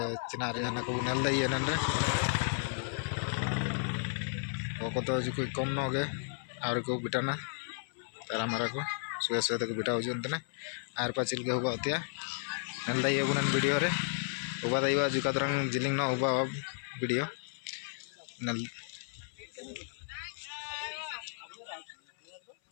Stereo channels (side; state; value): right; silent; 55 dB below the other